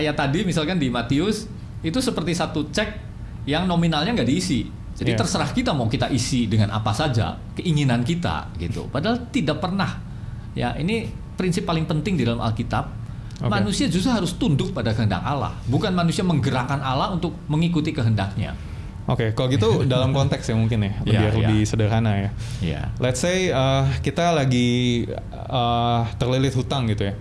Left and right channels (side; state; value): both; identical; correlation 1.00